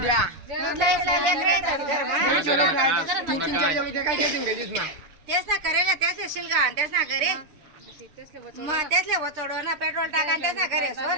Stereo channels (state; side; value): late; left; 6.6 ms